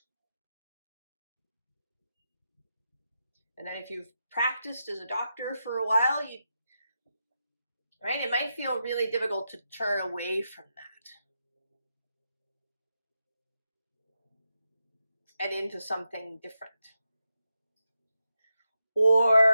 And then if you've practiced as a doctor for a while, right, it might feel really difficult to turn away from that and into something different.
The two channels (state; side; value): inverted; both; correlation -0.86